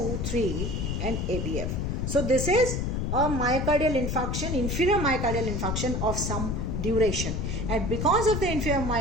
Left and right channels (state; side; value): noise; left; rumble, 1 dB below the sound